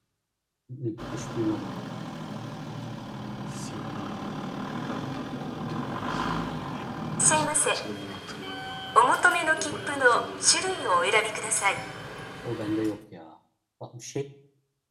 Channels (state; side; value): identical; both; correlation 1.00